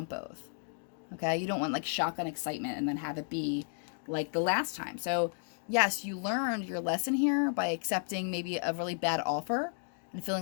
both. Okay, you don't want like shotgun excitement and then have it be like the last time. So yes, you learned your lesson here by accepting maybe a really bad offer and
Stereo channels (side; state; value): right; silent; digital silence